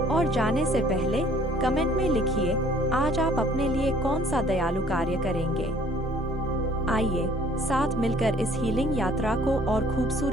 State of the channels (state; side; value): normal; both; correlation 0.57